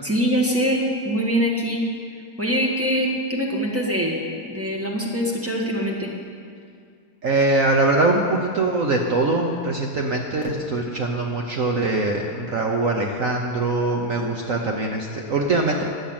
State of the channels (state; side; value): normal; both; correlation 0.08